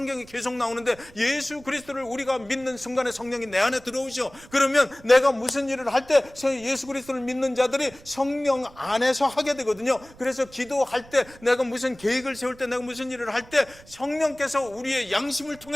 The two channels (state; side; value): noise; right; rumble, 23 dB below the sound